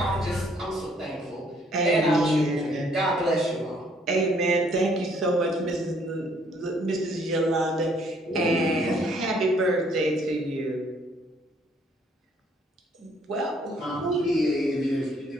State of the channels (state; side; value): normal; both; correlation 0.64